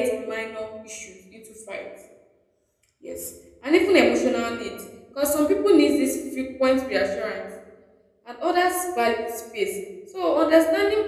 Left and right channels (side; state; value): both; identical; correlation 1.00